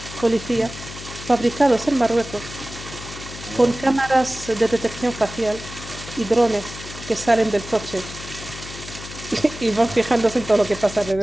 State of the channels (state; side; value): noise; left; hum, 13 dB below the sound